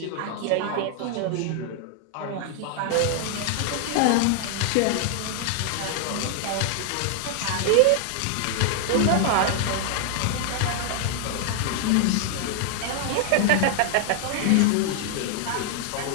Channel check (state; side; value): different; both; correlation 0.00